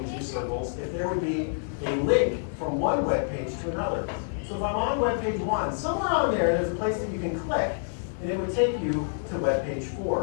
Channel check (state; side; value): silent; right; digital silence